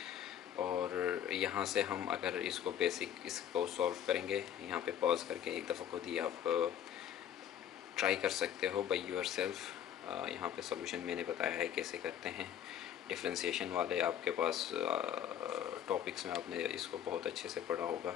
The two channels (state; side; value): quieter; right; 10.0 dB